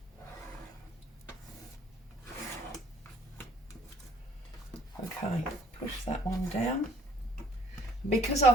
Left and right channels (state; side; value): normal; both; correlation 0.60